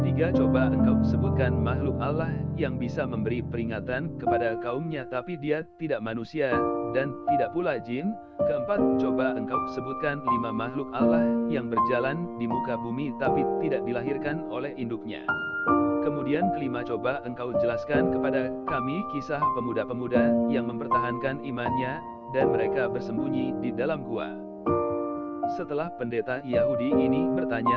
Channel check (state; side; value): identical; both; correlation 1.00